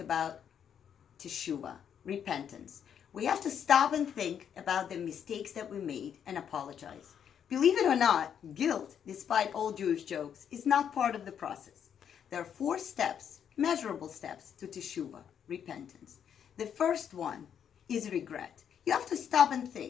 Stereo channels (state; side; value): quieter; right; 8.4 dB